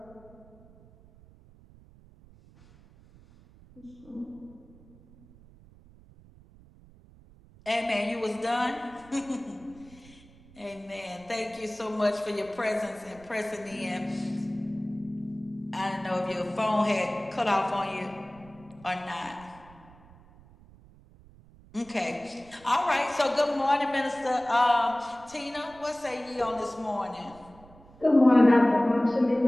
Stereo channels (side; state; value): right; noise; rumble, 24 dB below the sound